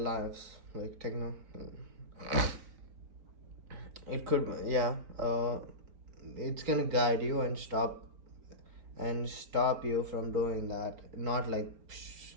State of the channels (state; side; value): late; left; 4.4 ms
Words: like techno, it could, yeah, it's gonna guide you and stop you from doing that, not like